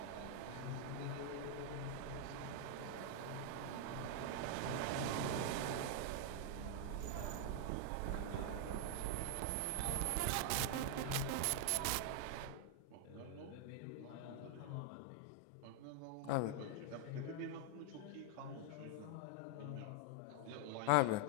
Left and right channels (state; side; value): different; both; correlation 0.00